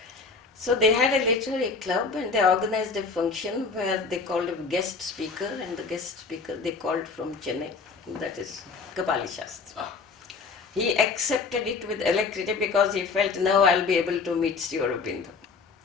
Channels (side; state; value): right; quieter; 4.7 dB